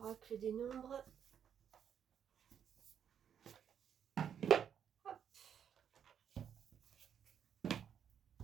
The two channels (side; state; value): left; quieter; 8.4 dB